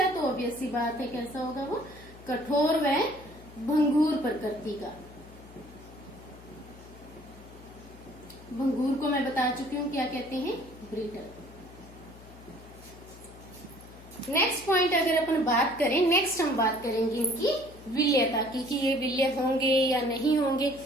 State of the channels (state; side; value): noise; left; hum, 20 dB below the sound